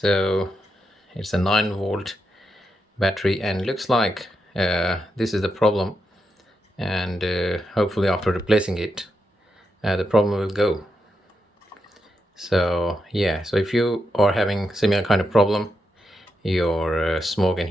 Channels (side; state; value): both; normal; correlation 0.85